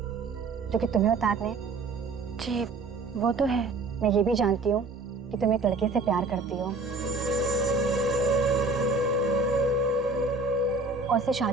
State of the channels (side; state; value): left; quieter; 3.6 dB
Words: जो कि तुम्हें उतारने हैं? जी वो तो है। मैं ये भी जानती हूँ कि तुम एक लड़के से प्यार करती हो और उससे